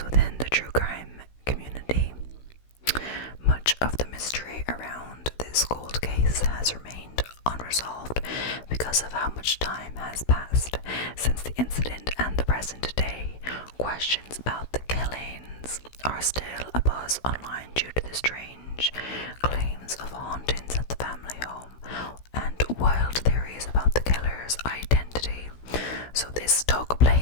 within the true crime community. Much of the mystery around this cold case has remained unresolved because of how much time has passed since the incident and the present day. Questions about the killings are still abuzz online due to the strange claims of hauntings at the family home and wild theories about the killer's identity. So this took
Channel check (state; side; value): late; right; 16 ms